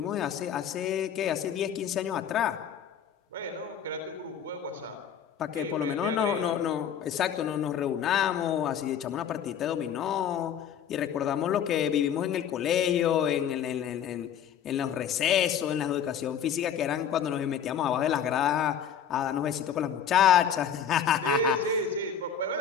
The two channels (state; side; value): quieter; right; 8.3 dB